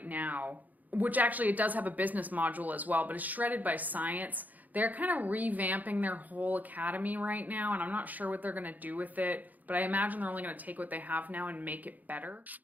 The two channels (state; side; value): late; left; 0.081 ms